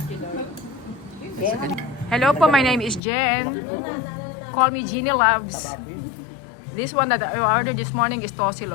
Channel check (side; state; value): right; drops out; at 3.0 s